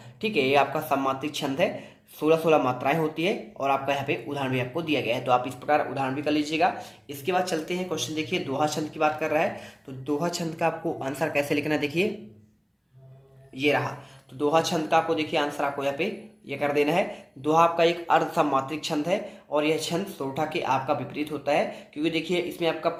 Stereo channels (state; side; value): identical; both; correlation 1.00